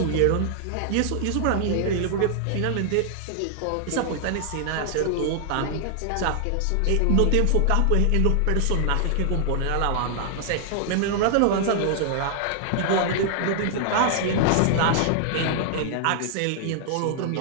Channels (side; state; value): both; different; correlation -0.01